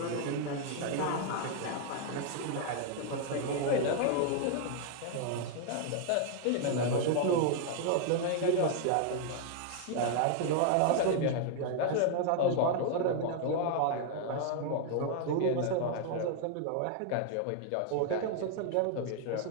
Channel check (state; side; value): different; both; correlation 0.00